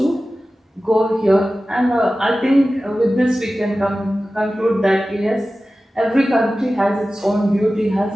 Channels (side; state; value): both; normal; correlation 0.95